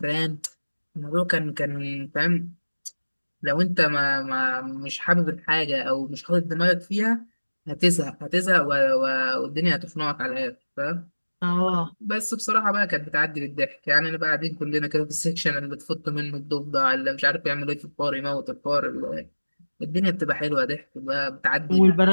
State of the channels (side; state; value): both; inverted; correlation -1.00